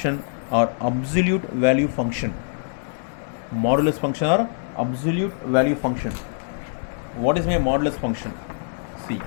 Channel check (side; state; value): right; silent; digital silence